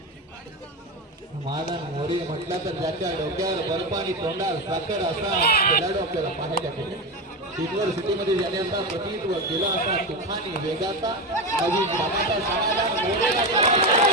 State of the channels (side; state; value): both; normal; correlation 0.17